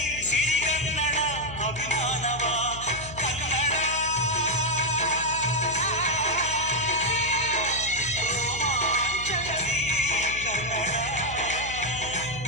ಸಿರಿಗನ್ನಡ ಅಭಿಮಾನವ. ಕನ್ನಡ ರೋಮಾಂಚನವೀ ಕನ್ನಡ.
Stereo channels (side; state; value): left; noise; hum, 13 dB below the sound